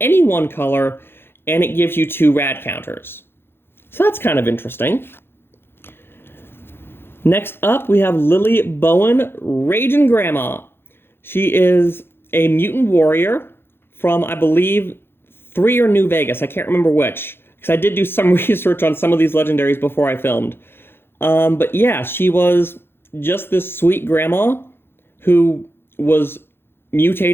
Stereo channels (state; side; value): late; right; 0.11 ms